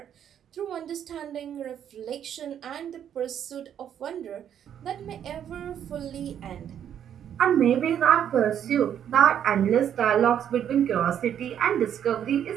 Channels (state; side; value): quieter; left; 9.4 dB